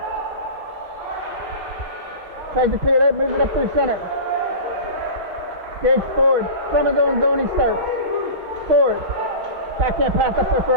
Tries to clear it out, moves it up through center. Gage Ford, from his own zone he starts. Ford, backhand pass up there for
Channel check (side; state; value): left; late; 6.2 ms